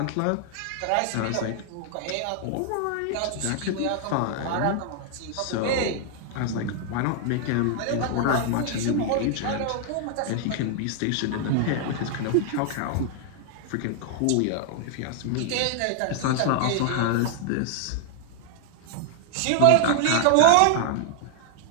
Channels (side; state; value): both; different; correlation 0.00